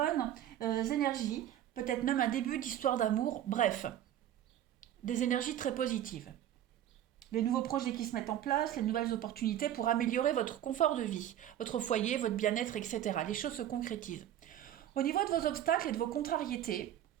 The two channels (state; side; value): quieter; left; 11.4 dB